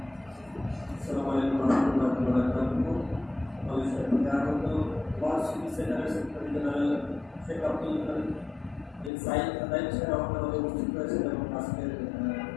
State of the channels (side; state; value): right; drops out; at 9.1 s